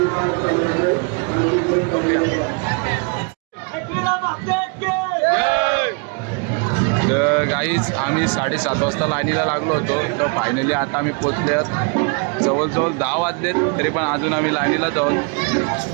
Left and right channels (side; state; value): left; quieter; 35.1 dB